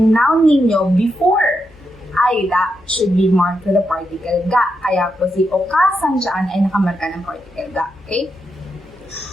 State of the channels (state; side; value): noise; left; hum, 29 dB below the sound